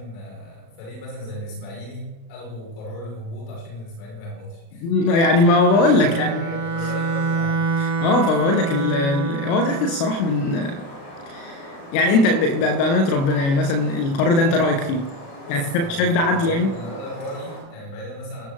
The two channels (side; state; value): right; late; 36 ms